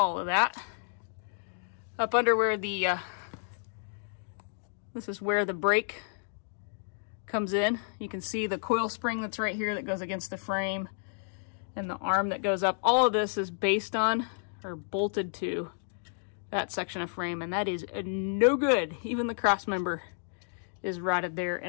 of that up under where the this is where the brake comes in. You can see the coil spring that's right here that goes against the frame and the arm that goes up. All of this is based on or bolted to that section of frame, and that is no good. Even the cross member is rotted there.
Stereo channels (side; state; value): right; silent; digital silence